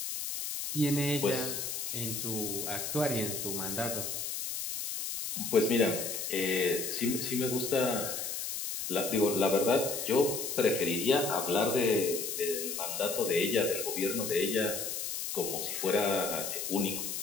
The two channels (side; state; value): left; noise; hiss, 4 dB below the sound